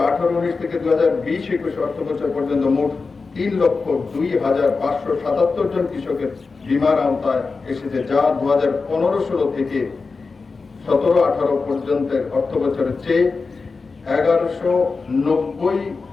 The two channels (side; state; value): right; quieter; 4.3 dB